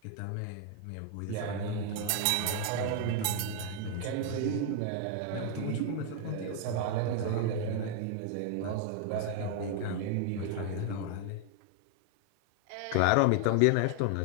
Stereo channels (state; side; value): different; both; correlation 0.00